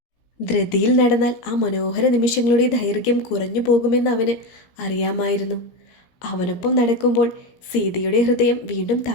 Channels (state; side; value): late; right; 17 ms